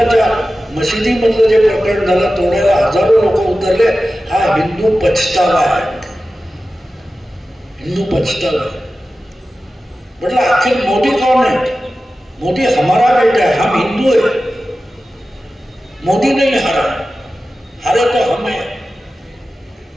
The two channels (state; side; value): normal; both; correlation 0.94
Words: मशिदीमधलं जे प्रकरण झालं, तोडायला हजारो लोक उतरले. हा हिंदू पछतावा आहे, हिंदू पछतावा आहे. म्हटलं आखिर मोदी कौन है? मोदी हमारा बेटा है, हम हिंदू है. मोदी नहीं हारा, हारे तो हम है